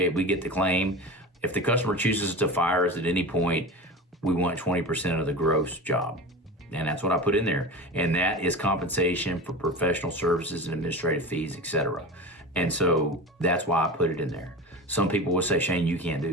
we get the claim. If the customer chooses to fire us at any point, we want 20% of the gross job. And that's what I put in there. And that is compensation for professional services and administrative fees, etc. And so that's why I put it in there. Some people will say, Shane, you can't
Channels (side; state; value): both; normal; correlation 0.29